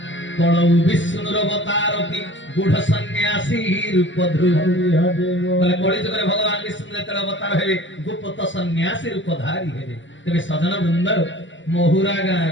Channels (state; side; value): late; right; 0.54 ms